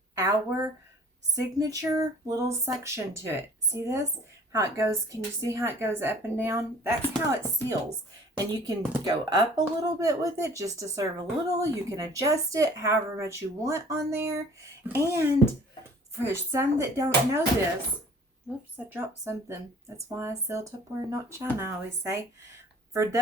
our signature little section to it. See this? How it goes. Can you see how it goes up and down? That's how it seals. And you can go up a little bit with it just to serve a little. You can adjust it however much you want on there. And for some that don't know this, whoops, I dropped something. That's why I sell Tupperware, not China, I always say. For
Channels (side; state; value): both; normal; correlation 0.50